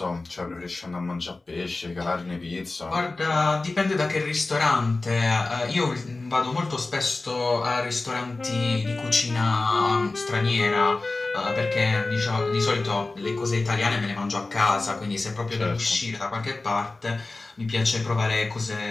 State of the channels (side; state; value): right; quieter; 3.3 dB